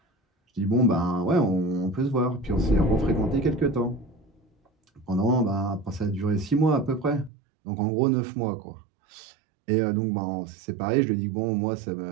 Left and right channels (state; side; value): drops out; left; at 7.3 s